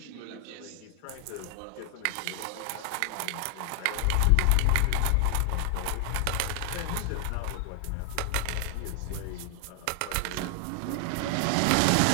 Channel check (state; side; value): different; both; correlation 0.00